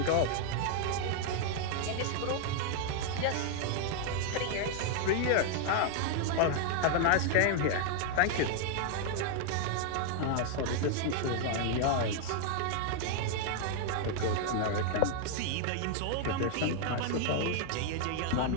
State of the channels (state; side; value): different; both; correlation 0.00